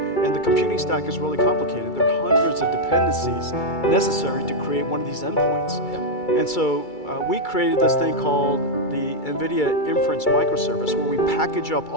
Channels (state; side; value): late; right; 2.3 ms